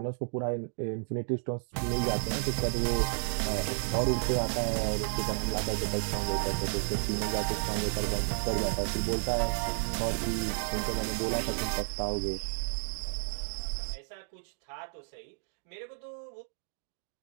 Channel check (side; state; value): left; silent; digital silence